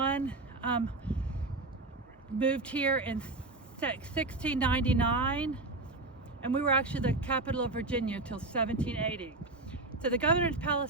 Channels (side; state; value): left; quieter; 3.1 dB